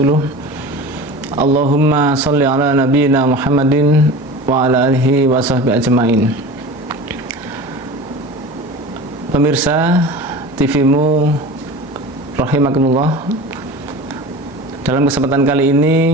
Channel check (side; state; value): both; normal; correlation 0.35